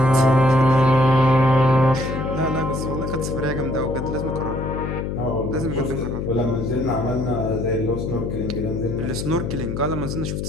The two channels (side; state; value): left; noise; hum, 3 dB below the sound